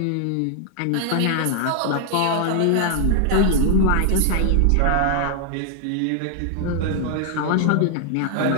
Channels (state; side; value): different; both; correlation 0.00